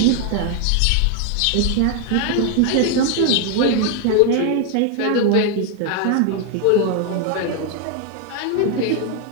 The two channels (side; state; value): both; different; correlation 0.01